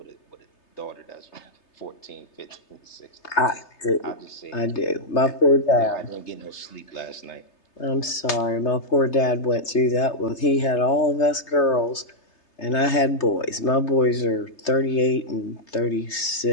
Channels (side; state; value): right; late; 3.3 ms